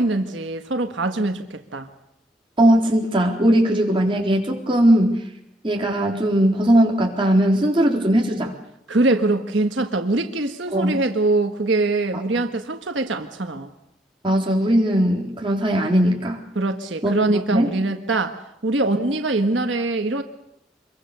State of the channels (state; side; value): normal; both; correlation 0.68